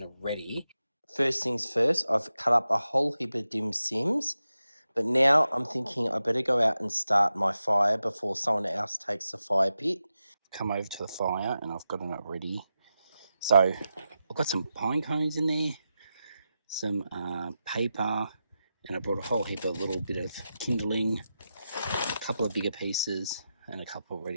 ready. First things first, I've cut up a whole heap of dim sims, but now I'm thinking I better go out and start my fire before someone else takes the fire pit. Come over to the fire, and I've gotten it ready. So I've got some pine cones in there, some paper, and I brought a whole heap of little bit of kindling, a couple of bigger pieces, and a couple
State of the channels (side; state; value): both; inverted; correlation -0.90